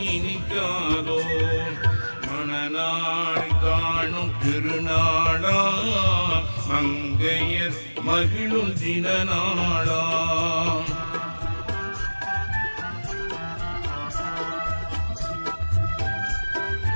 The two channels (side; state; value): both; inverted; correlation -1.00